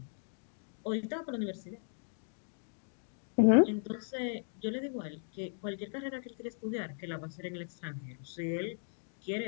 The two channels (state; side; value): silent; right; digital silence